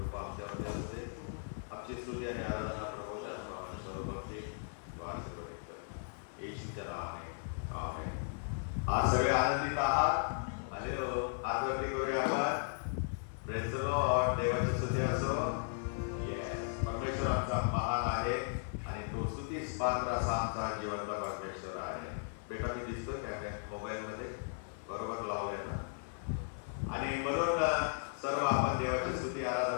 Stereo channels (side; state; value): right; silent; 53 dB below the other